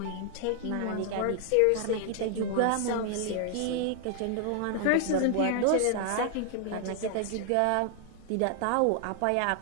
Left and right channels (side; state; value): both; different; correlation 0.00